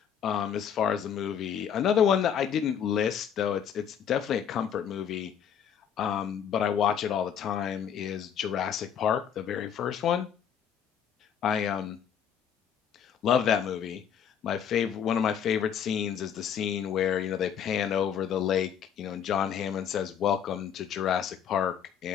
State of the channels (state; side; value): quieter; right; 8.4 dB